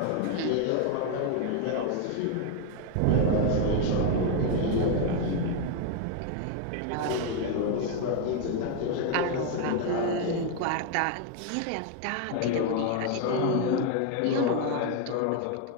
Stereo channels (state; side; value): different; both; correlation 0.01